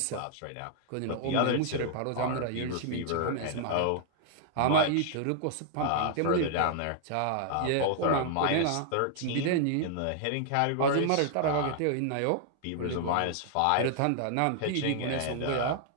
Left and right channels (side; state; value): both; different; correlation 0.00